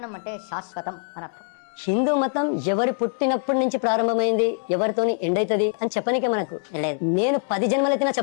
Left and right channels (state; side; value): silent; right; digital silence